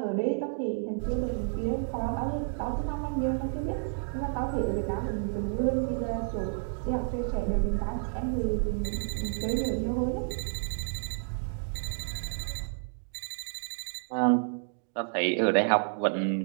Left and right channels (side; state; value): left; silent; digital silence